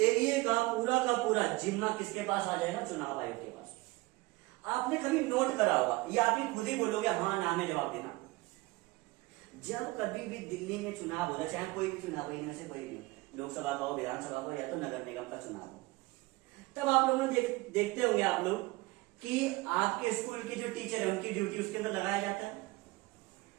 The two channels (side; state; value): left; quieter; 21.7 dB